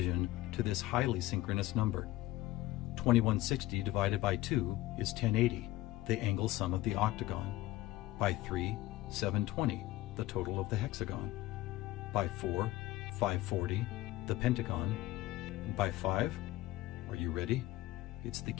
to this highly synchronous number. 2160 divided by 2 is 1080, the angle sum of the octagon. By 3, 720, the total of the hexagon. By 4, 540, the pentagon. And by 5, are you ready? It's the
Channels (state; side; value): quieter; right; 17.0 dB